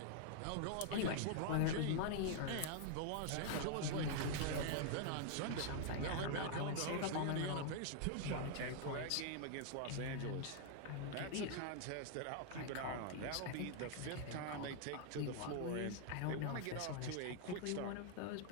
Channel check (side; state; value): both; different; correlation -0.01